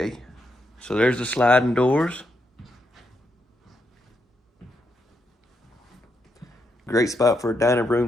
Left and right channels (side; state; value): both; normal; correlation 0.81